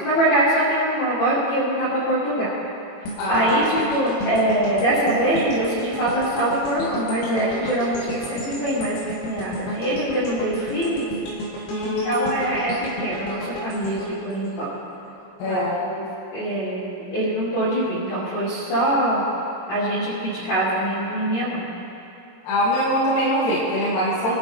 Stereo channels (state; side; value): late; right; 22 ms